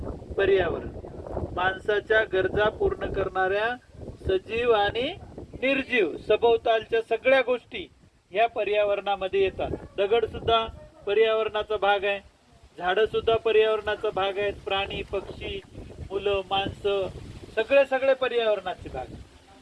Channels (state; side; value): identical; both; correlation 1.00